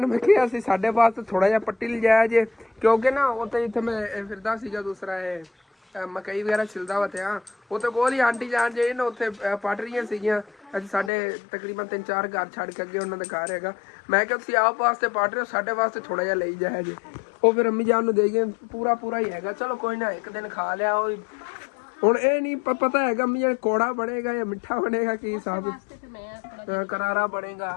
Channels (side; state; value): right; drops out; at 11.1 s